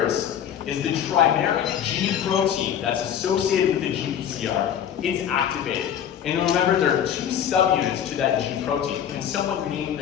is the trimeric G protein that's associated with the GPCR it's activated. And remember, there are two subunits to that G protein. Can someone name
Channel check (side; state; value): right; quieter; 9.4 dB